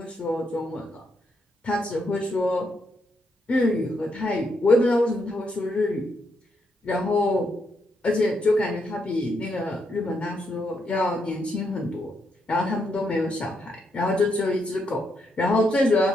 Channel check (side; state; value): both; normal; correlation 0.79